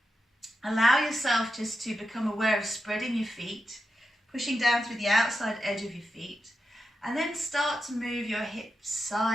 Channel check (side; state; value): both; normal; correlation 0.88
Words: Allow yourself just to become aware of spreading your feet, pushing down through the outside edge of your feet, and then start to move your hips